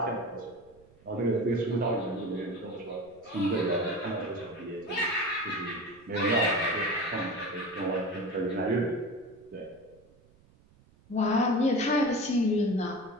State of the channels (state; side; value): noise; right; rumble, 28 dB below the sound